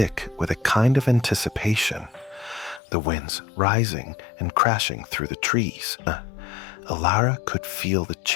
with a kind of anticipation, the winds rising and crashing through the trees. Alara could feel the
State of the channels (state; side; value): drops out; right; at 2.8 s